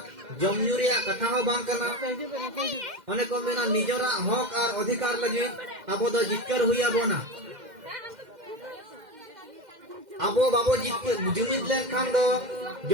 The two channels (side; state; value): left; late; 2.1 ms